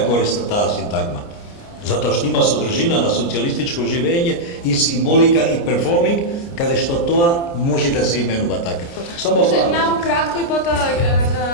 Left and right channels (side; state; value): right; late; 29 ms